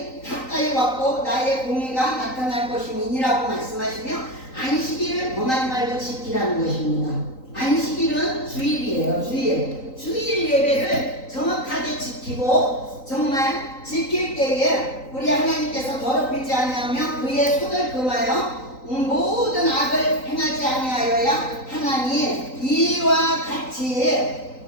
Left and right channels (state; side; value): late; right; 3.9 ms